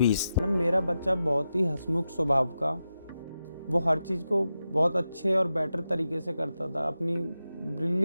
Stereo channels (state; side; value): inverted; both; correlation -0.90